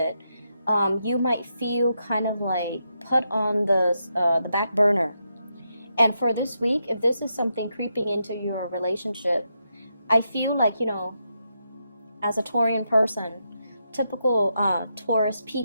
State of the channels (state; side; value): inverted; both; correlation -0.83